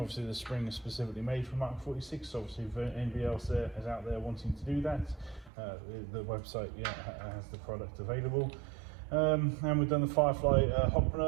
the spring is specifically made for MK46, so obviously if anybody else is out there wanting to do that, the website has the product available. And we've done the Firefly hot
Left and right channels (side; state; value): left; drops out; at 5.5 s